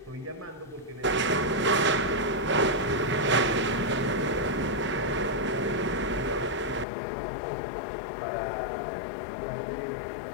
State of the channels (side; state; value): right; drops out; at 6.9 s